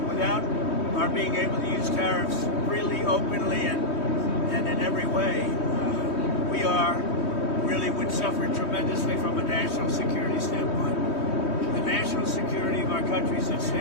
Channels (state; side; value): late; right; 3.2 ms